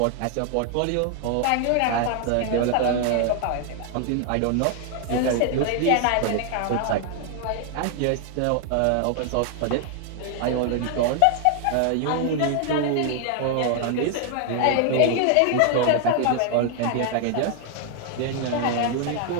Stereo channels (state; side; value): different; both; correlation 0.00